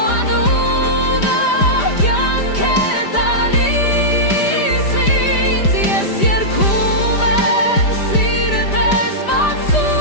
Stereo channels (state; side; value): late; right; 5.0 ms